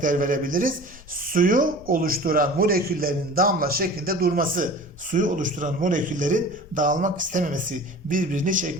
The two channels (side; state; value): left; noise; rumble, 21 dB below the sound